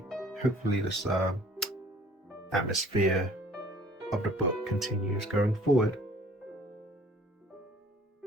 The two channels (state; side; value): normal; both; correlation 0.54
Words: this atmosphere of the book continues going forward.